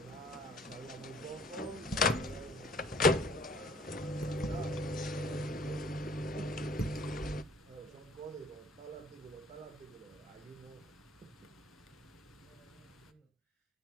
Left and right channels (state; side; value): normal; both; correlation 0.53